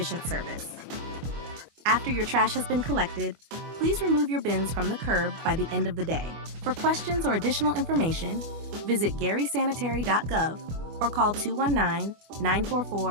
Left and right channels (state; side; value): late; left; 24 ms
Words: service. After your trash has been collected, please remove your bins from the curb by the end of the day. For questions or additional information, visit garysanitary.gov or call